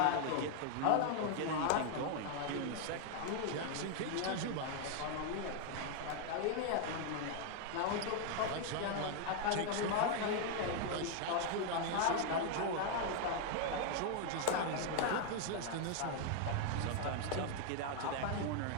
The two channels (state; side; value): different; both; correlation 0.00